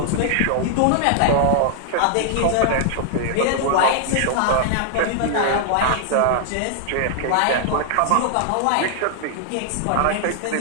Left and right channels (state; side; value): different; both; correlation 0.00